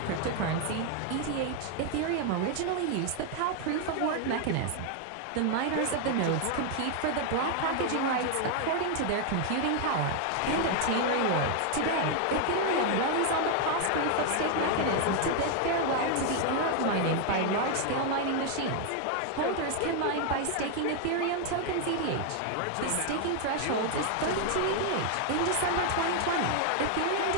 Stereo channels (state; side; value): different; both; correlation 0.00